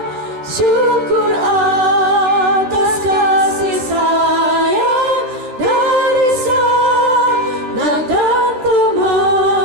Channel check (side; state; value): left; late; 14 ms